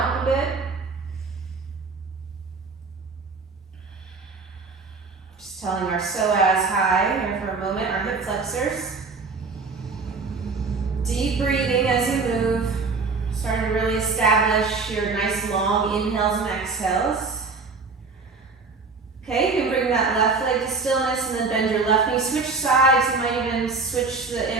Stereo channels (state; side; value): quieter; left; 4.3 dB